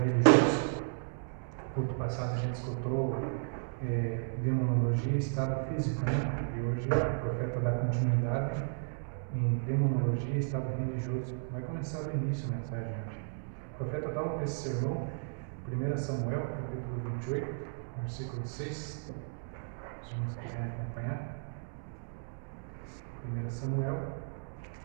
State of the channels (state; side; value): silent; left; digital silence